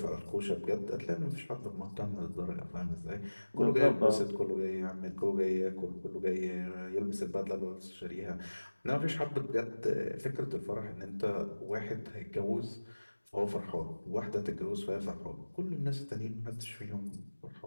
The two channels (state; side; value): inverted; both; correlation -1.00